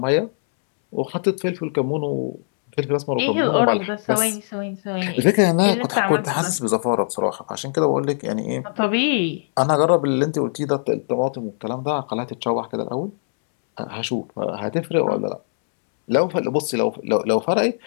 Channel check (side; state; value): right; silent; 64 dB below the other